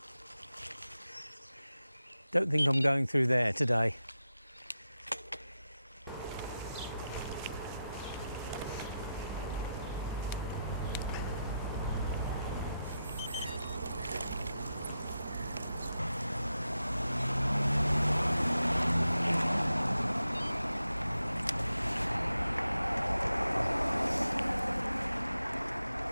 Don't think I'm going through there today.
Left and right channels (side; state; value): both; inverted; correlation -0.88